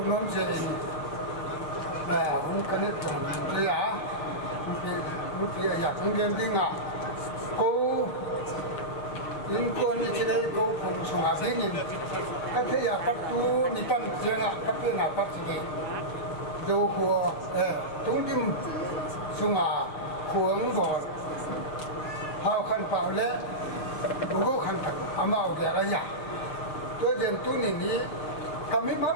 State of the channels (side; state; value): right; late; 6.5 ms